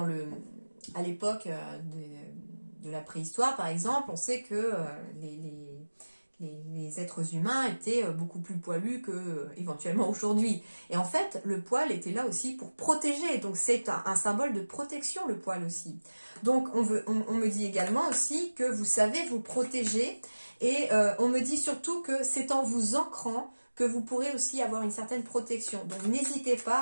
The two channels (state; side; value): inverted; both; correlation -1.00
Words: à l'époque de la préhistoire, par exemple, on sait que les êtres humains étaient beaucoup plus poilus que éventuellement aujourd'hui. Et en fait, le poil était là aussi pour protéger. Donc c'est un symbole de protection, le poil aussi. Donc on me dit également aussi que vous savez vous protéger. Et on me dit surtout que c'est en vous ancrant que vous pourrez aussi avoir une certaine protection. Donc n'hésitez